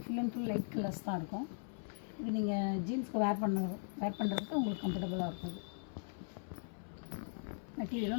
full and full light colours தான் இருக்கும். இது நீங்கள் ஜீன்ஸ்க்கு வேர் பண்ணுறதுக்கு உங்களுக்கு கம்ஃபர்டபுளாக இருக்கும்.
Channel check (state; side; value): silent; right; 52 dB below the other